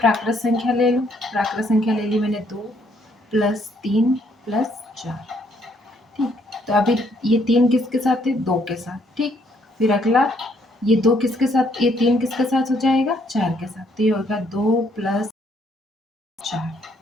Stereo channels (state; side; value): normal; both; correlation 0.69